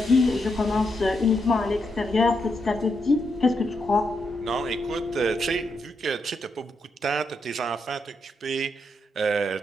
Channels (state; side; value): normal; both; correlation 0.82